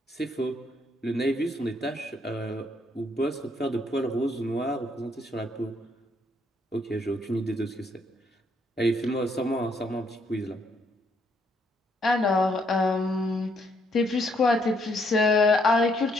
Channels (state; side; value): normal; both; correlation 0.72